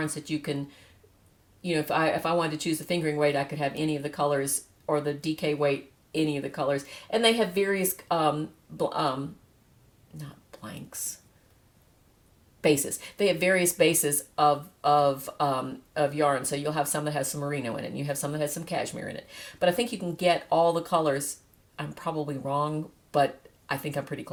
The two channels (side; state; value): both; identical; correlation 1.00